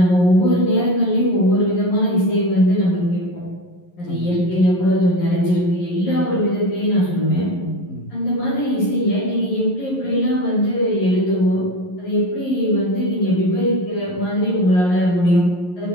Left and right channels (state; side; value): late; right; 11 ms